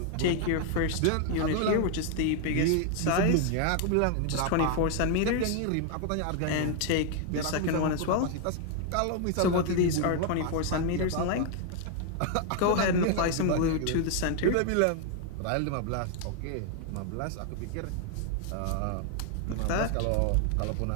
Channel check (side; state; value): both; different; correlation 0.00